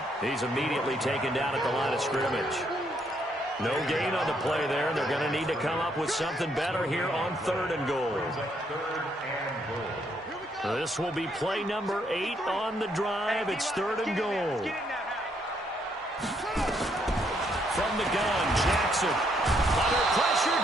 He's immediately taken down at the line of scrimmage. No gain on the play there, and they're going to need to come up with something better here on third and goal. This will be play number 8 on the drive. It's third and goal. From the gun, Jackson. Under pressure,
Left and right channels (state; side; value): normal; both; correlation 0.72